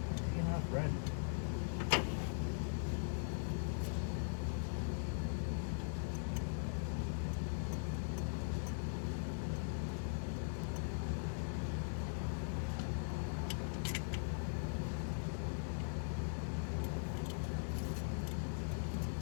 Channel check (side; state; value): right; silent; digital silence